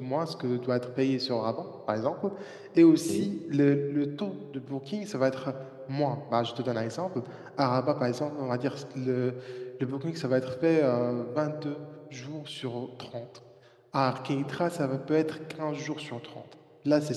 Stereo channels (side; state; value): both; identical; correlation 1.00